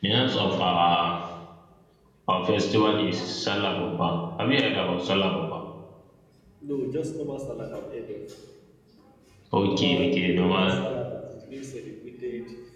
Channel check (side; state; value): both; identical; correlation 1.00